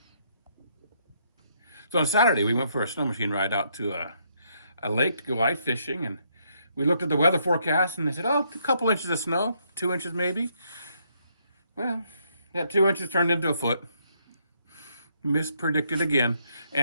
So on Saturday, we went for a snow machine ride out to a lake to go ice fishing, and we looked at the weather forecast, and they said, oh, a couple inches of snow, 2 inches maybe. Well, that 2 inches turned into a foot. Mispredicted again.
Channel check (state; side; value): inverted; both; correlation -0.73